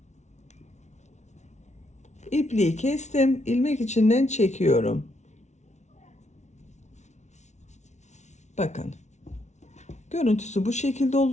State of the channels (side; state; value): right; late; 0.33 ms